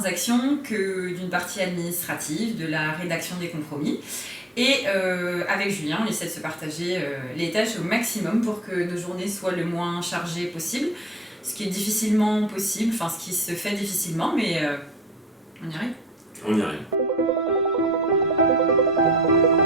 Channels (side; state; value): both; normal; correlation 0.49